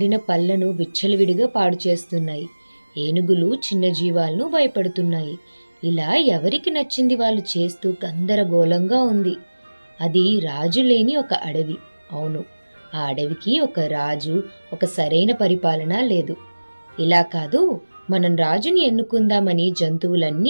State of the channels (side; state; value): both; inverted; correlation -1.00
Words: పళ్లను విచ్చలవిడిగా పాడు చేస్తున్నాయి. ఏనుగులు చిన్న జీవాలను భయపడుతున్నాయి. ఇలా ఎవరికి నచ్చింది వాళ్ళు చేస్తూ గందరగోళంగా ఉంది. అది రాజు లేని ఒక అడవి. అవును, ఆ అడవికి ఒక రాజు, ఒక సరైన పరిపాలన లేదు. ఇలా కాదు, మనం రాజుని ఎన్నుకుందామని